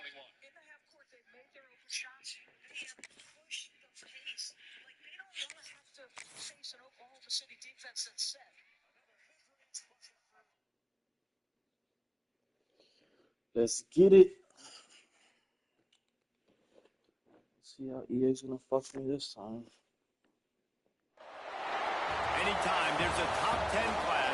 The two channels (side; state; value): both; identical; correlation 1.00